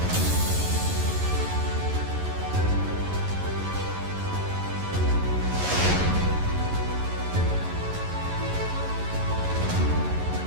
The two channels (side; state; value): left; late; 11 ms